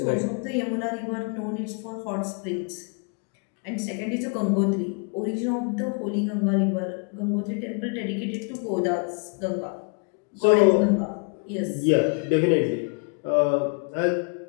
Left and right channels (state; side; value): quieter; right; 37.7 dB